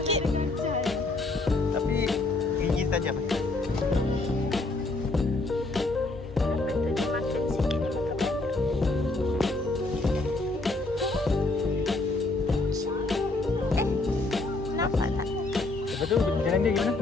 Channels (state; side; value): quieter; right; 3.1 dB